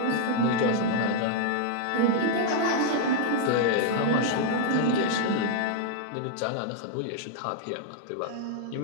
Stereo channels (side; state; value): both; different; correlation -0.01